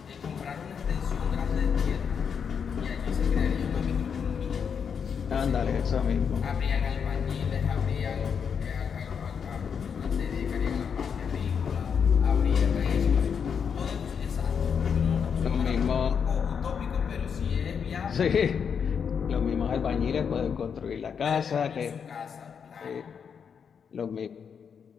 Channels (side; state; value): right; quieter; 6.9 dB